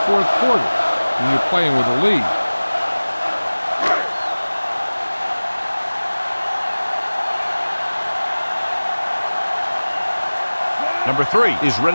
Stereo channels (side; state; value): both; inverted; correlation -1.00